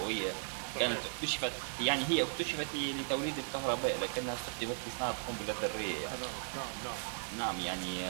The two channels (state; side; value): silent; left; digital silence